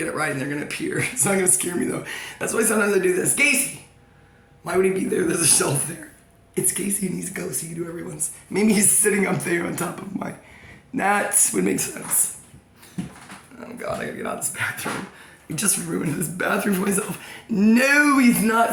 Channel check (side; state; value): both; identical; correlation 1.00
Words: it right and they're gonna appear. It's not gonna scare me though. That's why sometimes I do this. Gacy! Why would he be there? There's a shelf there. It's Gacy and he's a ghost. He can do everyone's. Maybe he's sitting up there on top of my... That would make sense. Oh God, I gotta get out of this bathroom. I just ruined this bathroom for myself. No, he's